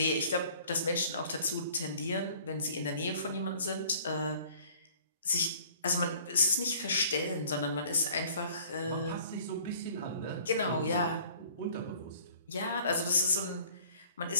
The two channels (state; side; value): inverted; both; correlation -0.53